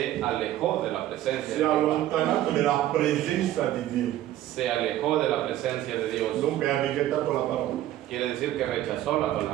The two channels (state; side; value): quieter; left; 13.5 dB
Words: alejó de la presencia Si de è Jehová. allontanato dalla presenza di Dio. Se alejó de la presencia de Dios. Dunque ha rigettato la parola. Quiere decir que rechazó la